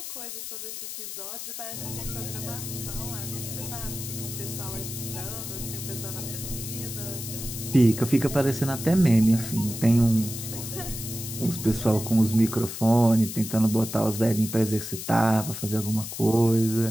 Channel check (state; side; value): noise; left; hiss, 8 dB below the sound